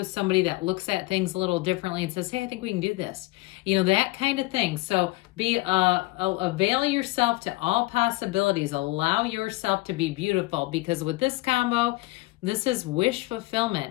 somebody that looks at things a little differently and says, hey, I think we can do this. You know, that kind of thing. So avail yourself to all possibilities. Allow yourself to be beautiful, because with this combo, this is wish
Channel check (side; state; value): right; quieter; 21.5 dB